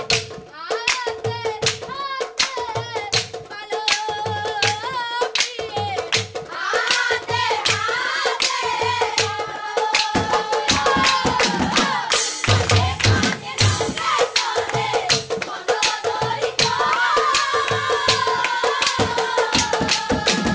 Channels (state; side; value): identical; both; correlation 1.00